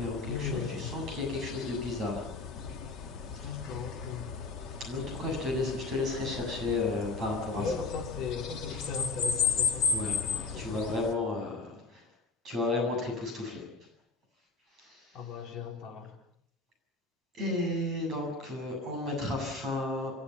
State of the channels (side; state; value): right; quieter; 3.6 dB